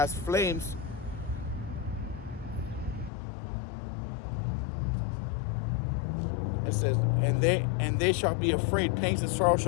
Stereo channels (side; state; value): right; drops out; at 3.1 s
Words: flames. It says, and they shall be afraid, pangs and sorrow